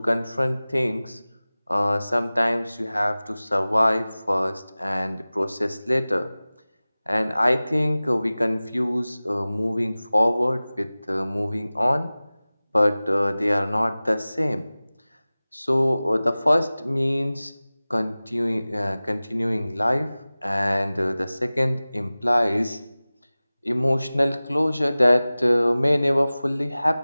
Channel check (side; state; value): both; inverted; correlation -0.98